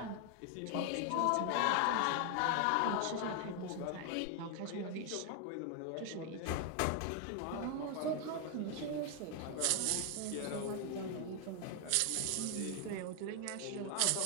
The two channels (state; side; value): different; both; correlation 0.00